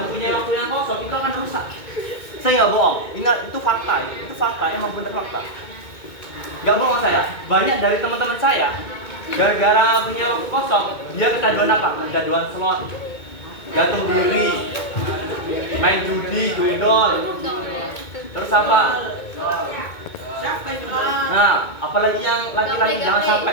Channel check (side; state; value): right; late; 2.2 ms